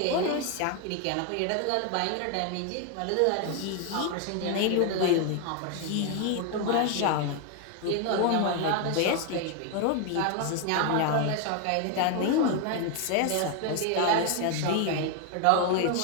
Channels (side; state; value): both; different; correlation 0.00